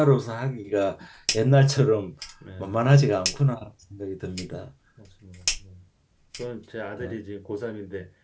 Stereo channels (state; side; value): identical; both; correlation 1.00